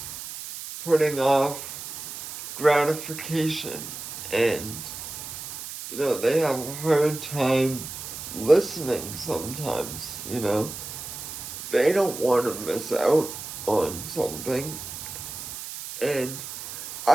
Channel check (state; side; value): noise; right; hiss, 9 dB below the sound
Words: putting off gratification, and they have a hard time listening sometimes. They don't want to miss out on something, and